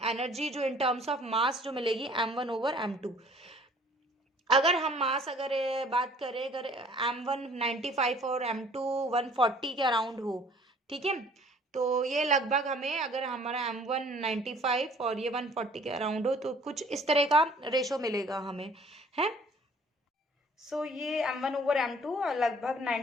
एनर्जी जो इन टर्म्स ऑफ मास जो मिलेगी M1 ओवर M2। अगर हम मास अगर बात करें, अगर M1 95 और M2 140 के अराउंड हो, ठीक है, तो ये लगभग हमें अगर हमारा M1 95 और ये 140 के अराउंड हो तो कुछ इस तरह का रेशो मिलेगा हमें, है। सो ये M1 ओवर M2 लगभग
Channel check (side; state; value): both; normal; correlation 0.54